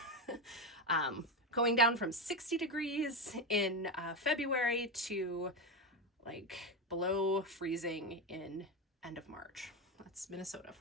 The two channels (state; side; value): normal; both; correlation 0.13